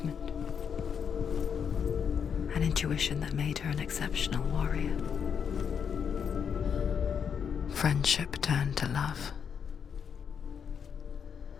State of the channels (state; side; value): quieter; right; 7.2 dB